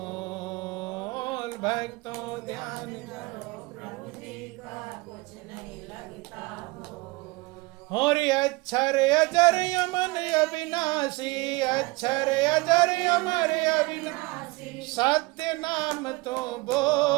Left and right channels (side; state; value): left; quieter; 24.1 dB